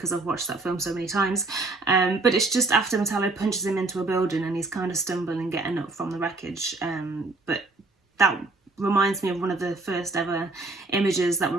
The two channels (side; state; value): left; quieter; 3.2 dB